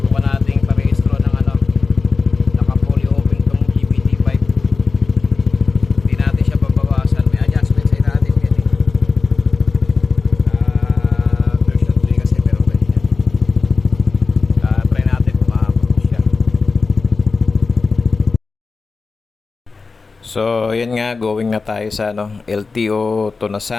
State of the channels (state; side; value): quieter; right; 4.3 dB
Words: natin parehistro ng naka fully open tong GBT5. Hindi natin siya pabawasan. May adjustment sa natin yan eh. Version 3 kasi meron ganyan. Try natin kung ma-approve siya. So, yan nga, going na tayo sa LTO